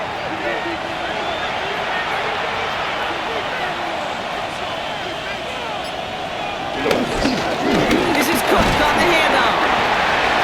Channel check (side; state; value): both; identical; correlation 1.00